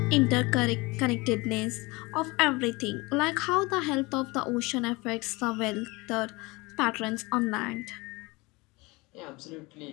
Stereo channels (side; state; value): right; quieter; 24.2 dB